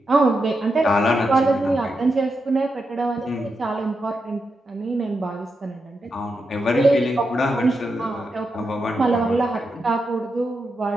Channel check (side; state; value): both; normal; correlation 0.86